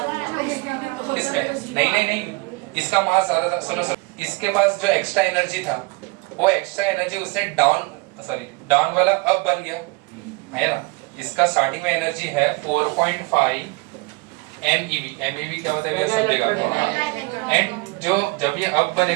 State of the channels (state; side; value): quieter; left; 26.5 dB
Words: है इसमें नहीं, इसका मास ज्यादा था। सुनो, इसके पास जो एक्स्ट्रा एनर्जी था वो एक्स्ट्रा एनर्जी उससे डाउन वाला अब बन गया है ना। इसका स्टार्टिंग में एनर्जी है 4.5 MeV। MeV क्या होता है ये समझेगा। एंड जो जब ये अब